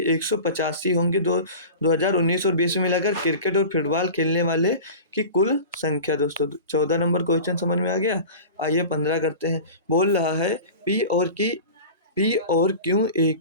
185 होंगे 2019 और 20 में मिलाकर क्रिकेट और फुटबॉल खेलने वाले की कुल संख्या दोस्तों। 14 नंबर क्वेश्चन समझ में आ गया। आइए 15 करते हैं। बोल रहा है पी और क्यू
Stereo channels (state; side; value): inverted; both; correlation -0.35